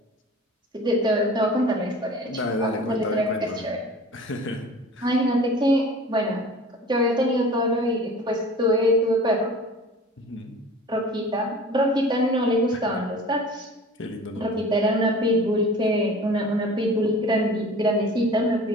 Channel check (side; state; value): both; normal; correlation 0.42